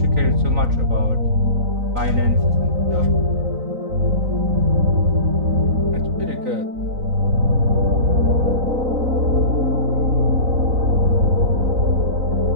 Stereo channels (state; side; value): late; left; 3.9 ms